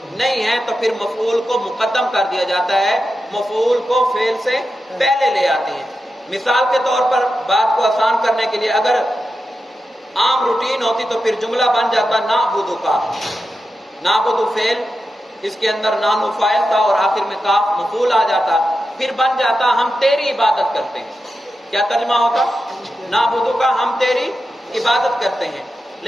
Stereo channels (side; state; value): both; normal; correlation 0.90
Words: نہیں ہے، تو پھر مفعول کو مقدم کر دیا جاتا ہے، مفعول کو فعل سے پہلے لے آتے ہیں۔ مثال کے طور پر بات کو آسان کرنے کے لیے اگر عام روٹین ہوتی تو پھر جملہ بن جاتا نعبد کا، نعبد فعل، اس کے اندر نانو فاعل تھا اور آخر میں کاف مفعول آ جاتا، پھر بن جاتا ہم تیری عبادت کرتے ہیں۔ کیا ترجمہ ہوتا؟ نعبد کا، ہم تیری عبادت کرتے ہیں۔